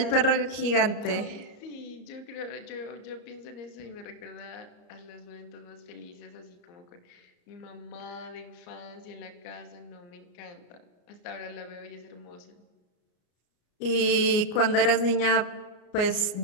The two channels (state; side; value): late; right; 34 ms